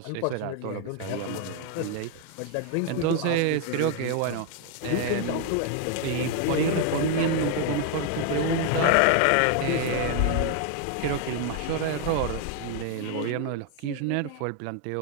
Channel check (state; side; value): different; both; correlation 0.00